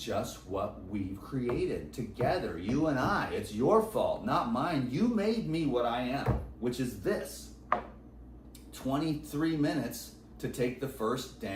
what we've created together, you and I. It's your fault, not mine. You made me what I am, which is this. 23 minutes to take the first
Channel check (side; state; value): both; identical; correlation 1.00